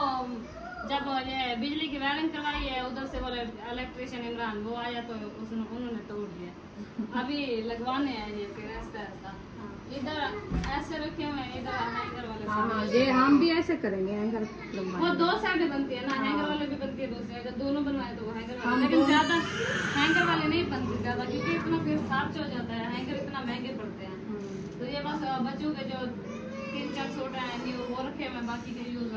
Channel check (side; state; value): both; identical; correlation 1.00